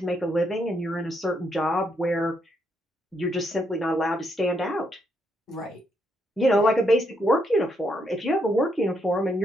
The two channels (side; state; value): both; normal; correlation 0.77